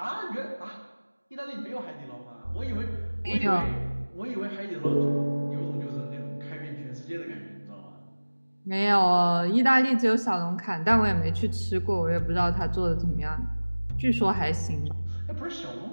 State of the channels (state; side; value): inverted; both; correlation -1.00